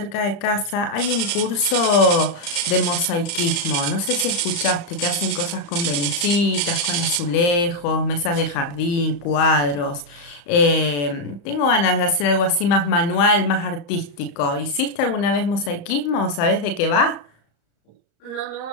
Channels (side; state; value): right; late; 34 ms